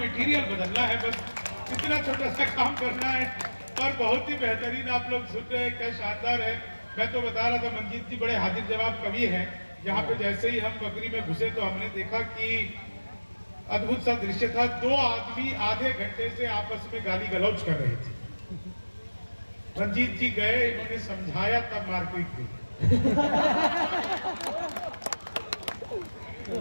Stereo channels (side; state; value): both; inverted; correlation -1.00